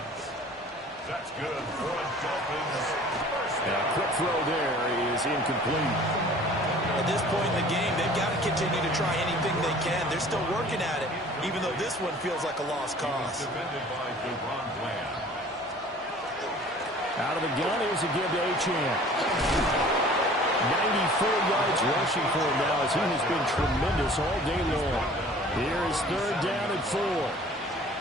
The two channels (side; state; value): both; normal; correlation 0.48